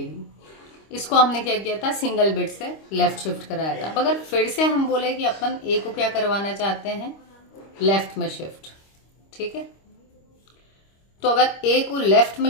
ली, इसको हमने क्या किया था, सिंगल बिट से लेफ्ट शिफ्ट कराया था। अब अगर फिर से हम बोले कि अपन ए को क्या करवाना चाहते हैं, लेफ्ट में शिफ्ट, ठीक है। तो अगर ए को लेफ्ट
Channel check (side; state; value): right; late; 25 ms